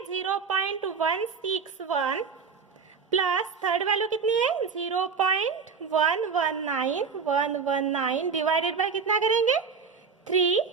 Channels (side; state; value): left; quieter; 5.6 dB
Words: 0.161 प्लस थर्ड वैल्यू कितनी है 0.119 डिवाइडेड बाय कितना करेंगे 3.